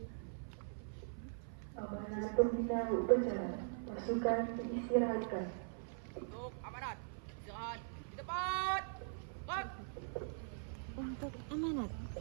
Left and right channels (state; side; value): silent; left; 50 dB below the other